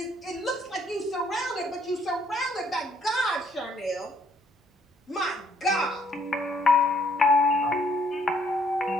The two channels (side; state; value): both; normal; correlation 0.66